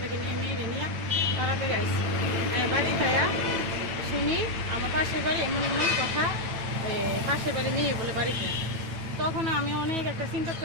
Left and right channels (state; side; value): late; left; 9.0 ms